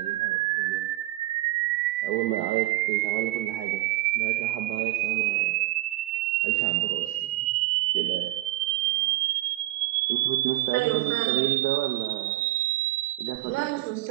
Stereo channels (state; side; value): quieter; left; 17.7 dB